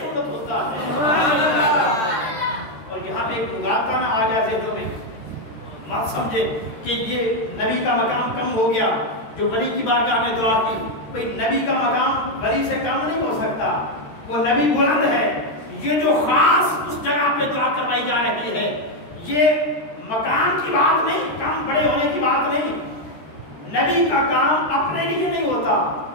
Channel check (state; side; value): late; right; 13 ms